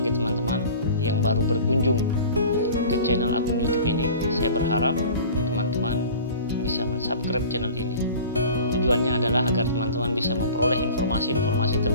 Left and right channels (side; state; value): both; inverted; correlation -0.41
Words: teman-teman yang baru berkunjung ke channel akun YouTube ini, saya berharap teman-teman bisa mensubscribe channel ini. Tujuannya adalah agar teman-teman bisa memperoleh informasi-informasi